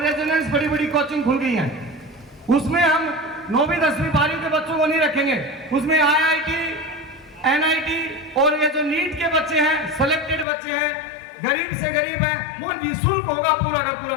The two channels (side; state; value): right; drops out; at 10.5 s